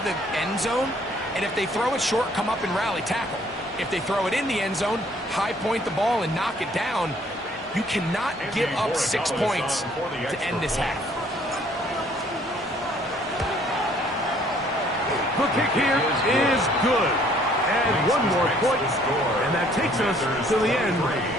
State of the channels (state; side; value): normal; both; correlation 0.61